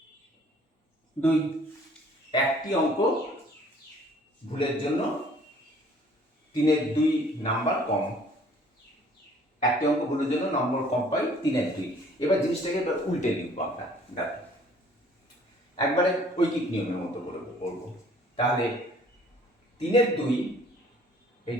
2। একটি অঙ্ক ভুলের জন্য 3 2 নাম্বার কম, একটি অঙ্ক ভুলের জন্য নম্বর কম পাই 3 2। এবার জিনিসটাকে উল্টে লিখবো আমরা। দেখো একবারে ঐকিক নিয়মের মতো করে করবো। তাহলে 3 2, এই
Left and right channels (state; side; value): normal; both; correlation 0.56